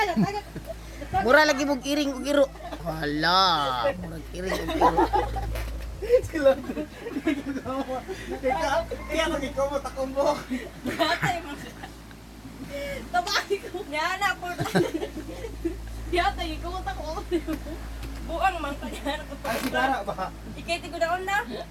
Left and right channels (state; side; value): identical; both; correlation 1.00